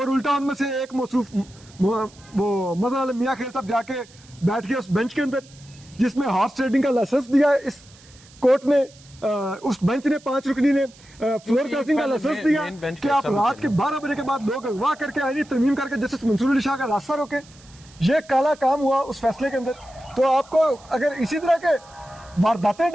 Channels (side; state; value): right; noise; hiss, 25 dB below the sound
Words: उल्टा उनमें से एक मौसूफ वो मज़हर आलम मियां खेल साहब जाके बैठ गया उस बेंच के अंदर जिसमें हॉर्स ट्रेडिंग का लाइसेंस दिया है इस कोर्ट ने उस बेंच ने 5 रुकनी ने फ्लोर क्रॉसिंग का लाइसेंस दिया मेन बेंच कि आप रात के 12 बजे के बाद लोग अगवा करके आईनी तरमीम करके जस्टिस मंसूर अली शाह का रास्ता रोके। ये काला काम हुआ उस फैसले के अंदर। तो आपको अगर इसी तरह के वारदातें